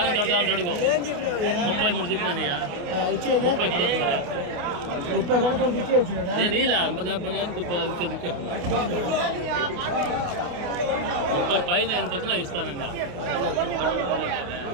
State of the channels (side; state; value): left; late; 28 ms